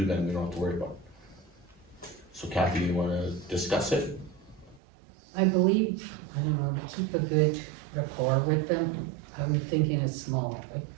then we don't have to worry about it. So Kathy, you wanna discuss it? I believe, I don't know, to keep a good rapport with them, I'm thinking it's small, like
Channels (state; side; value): drops out; left; at 4.8 s